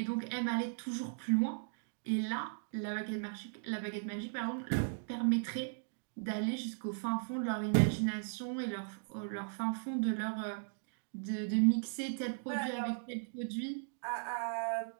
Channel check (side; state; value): left; silent; digital silence